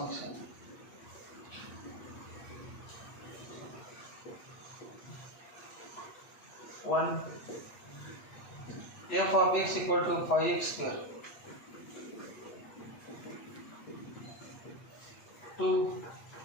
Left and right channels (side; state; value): right; late; 8.4 ms